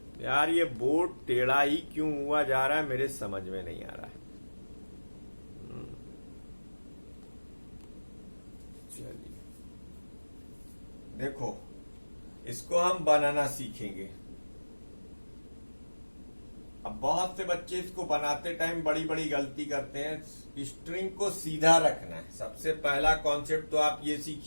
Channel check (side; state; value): both; inverted; correlation -1.00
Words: यार ये बोर्ड टेढ़ा ही क्यों हुआ जा रहा है, मेरे समझ में नहीं आ रहा है. चलिए देखो, इसको हम बनाना सीखेंगे. अब बहुत से बच्चे इसको बनाते टाइम बड़ी बड़ी गलती करते हैं. स्ट्रिंग को सीधा रखना है. सबसे पहला कॉन्सेप्ट तो आप ये